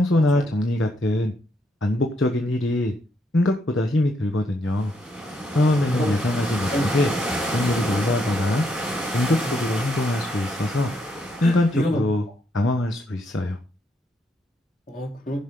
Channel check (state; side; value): normal; both; correlation 0.76